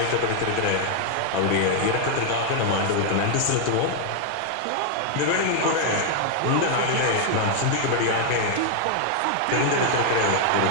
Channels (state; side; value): different; both; correlation 0.00